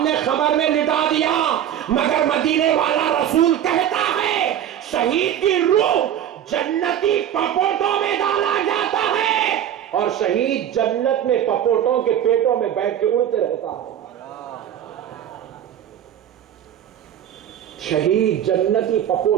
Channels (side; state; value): left; quieter; 10.4 dB